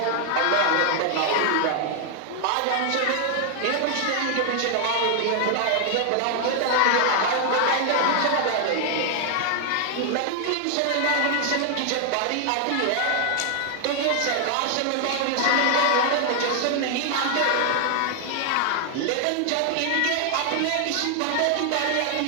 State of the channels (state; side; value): different; both; correlation 0.00